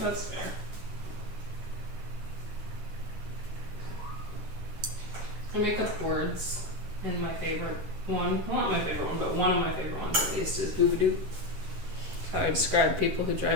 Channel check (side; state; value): left; late; 10 ms